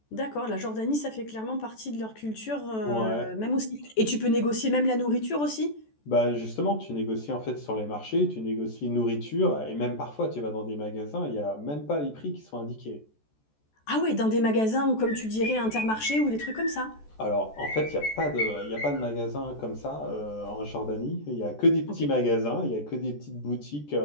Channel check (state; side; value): late; right; 14 ms